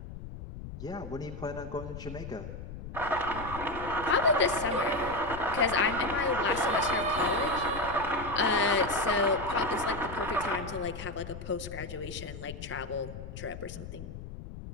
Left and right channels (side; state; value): left; noise; rumble, 10 dB below the sound